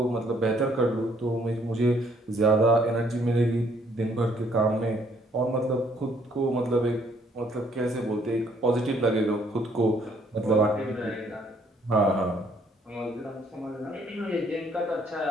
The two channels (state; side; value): normal; both; correlation 0.65